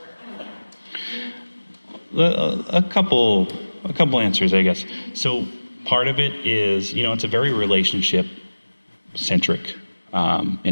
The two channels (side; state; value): both; inverted; correlation -1.00